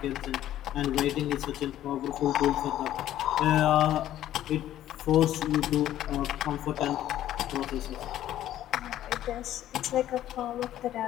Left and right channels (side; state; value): right; quieter; 12.6 dB